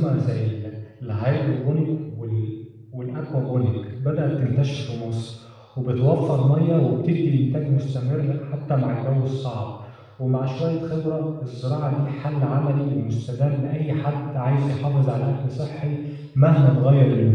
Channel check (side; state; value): both; identical; correlation 1.00